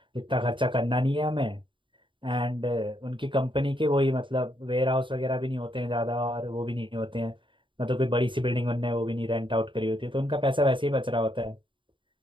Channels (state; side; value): late; left; 0.24 ms